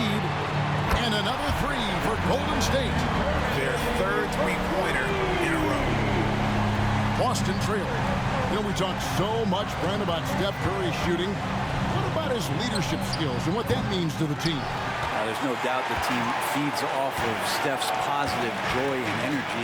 And another 3 for Golden State. Their third three-pointer in a row. Boston trailing. You know, we talk so much, Brent, about Steph Curry shooting. What about his leadership skills and what that means to the team? There's no doubt the team feeds off of Steph's positive joy and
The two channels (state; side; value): identical; both; correlation 1.00